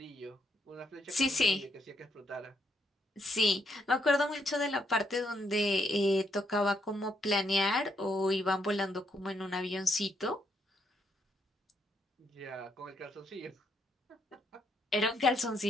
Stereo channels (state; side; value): normal; both; correlation 0.75